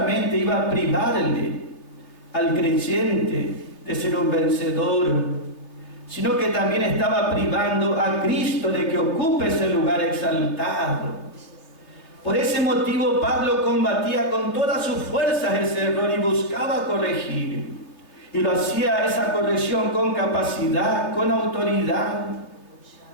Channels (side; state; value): right; late; 3.2 ms